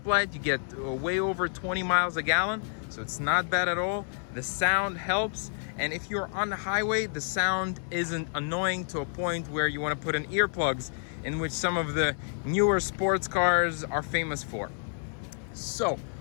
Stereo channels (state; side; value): silent; right; 58 dB below the other